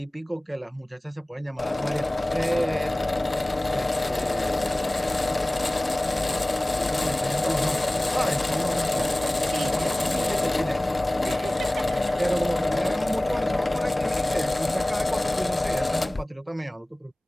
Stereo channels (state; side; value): normal; both; correlation 0.98